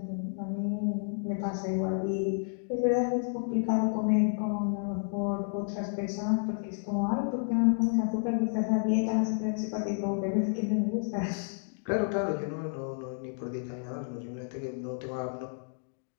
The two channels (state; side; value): silent; right; digital silence